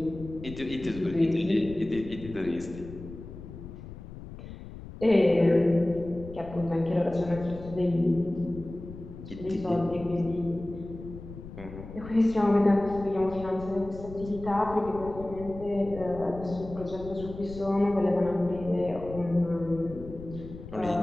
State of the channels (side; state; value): left; noise; rumble, 13 dB below the sound